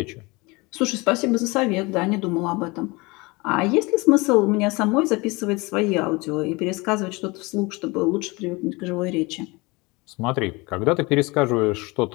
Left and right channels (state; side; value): quieter; right; 24.9 dB